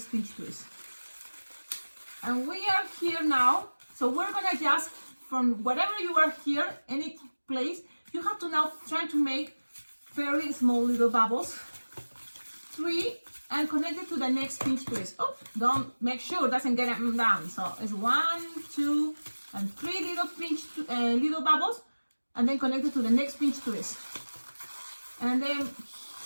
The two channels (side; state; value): both; inverted; correlation -1.00